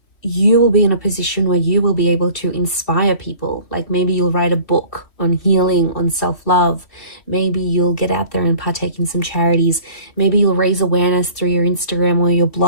you will be in a position where you will be able to inspire people. Like maybe you'll write a book on healing, on self-love. Maybe you'll get out there and partake in some charities. Maybe you'll raise awareness through your Instagram or your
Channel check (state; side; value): late; right; 2.7 ms